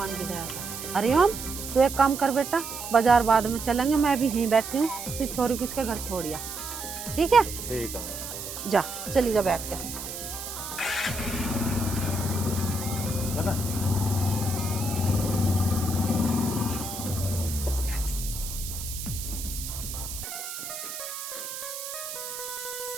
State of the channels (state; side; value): noise; right; hiss, 8 dB below the sound